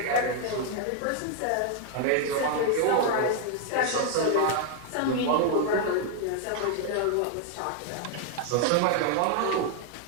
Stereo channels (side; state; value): both; different; correlation 0.00